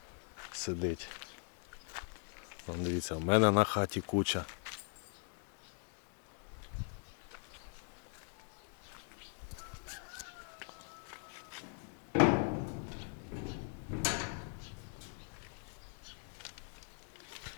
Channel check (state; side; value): silent; right; 51 dB below the other